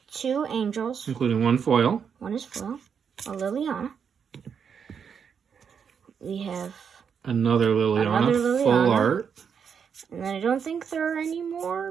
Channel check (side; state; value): left; quieter; 7.0 dB